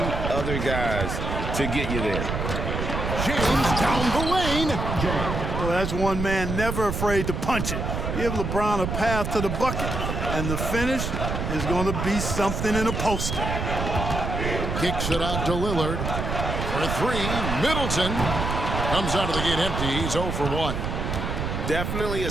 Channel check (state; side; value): noise; right; rumble, 3 dB below the sound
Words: other guys to get you there. James down the lane. Well, that's one man never afraid to punch it. Give LeBron a path to the bucket, and the finish is going to be something in a poster. Kicks it out to Lillard. For three, Middleton comes out of the gate empty. He's 0 for 1. Definitely a